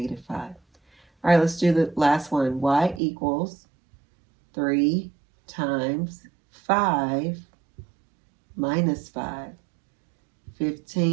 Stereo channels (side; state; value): left; drops out; at 3.0 s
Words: 5. All right, let's do the last one. Y equals 3 times 5 minus 5.